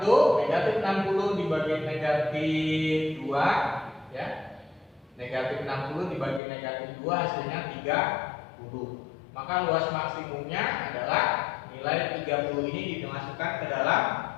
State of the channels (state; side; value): drops out; right; at 6.4 s